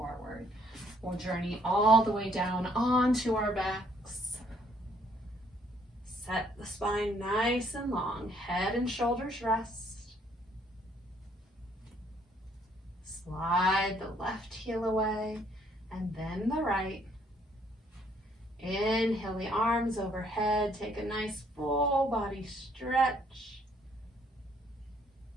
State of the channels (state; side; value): normal; both; correlation 0.66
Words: We'll journey all the way down onto our backs. Set the spine nice and long. Head and shoulders rest. Slide the left heel away and then the right. Inhale the arms overhead. Take a nice full body stretch.